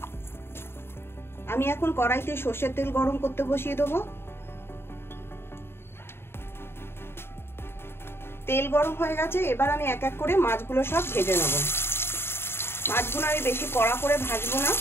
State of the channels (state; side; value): late; right; 0.11 ms